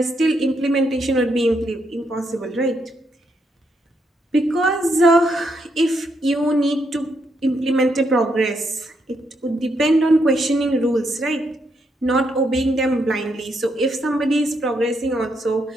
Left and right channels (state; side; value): normal; both; correlation 0.78